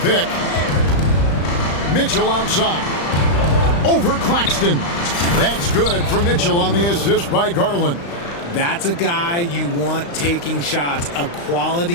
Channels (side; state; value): right; late; 35 ms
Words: pick. Mitchell outside. Over Claxton. That's good for Mitchell on the assist by Garland. That's a guy you want taking shots, a